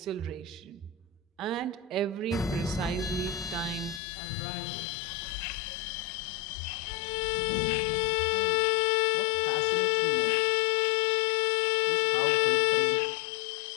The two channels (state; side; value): drops out; right; at 4.0 s